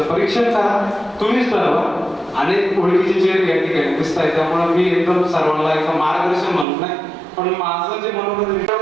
परीक्षण करा, तुम्हीच ठरवा. आणि ओळखीचे चेहरे या ठिकाणी दिसत आहे, त्यामुळे मी एकदम सर्वांना एकदम मार्गदर्शन म्हणत नाही, पण माझं जे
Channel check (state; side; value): drops out; left; at 6.7 s